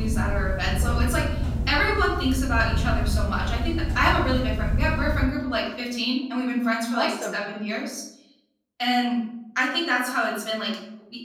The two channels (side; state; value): both; identical; correlation 1.00